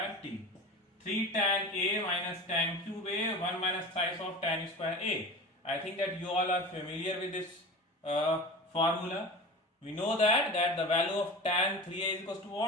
t. 3 tan a minus tan cube a, 1 minus thrice of tan square a. I think that you all are familiar with this formula. We know that the value of tan 3a is equals to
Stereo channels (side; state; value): both; normal; correlation 0.32